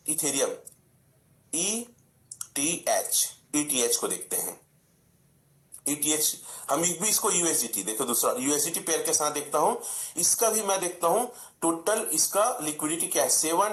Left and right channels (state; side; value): identical; both; correlation 1.00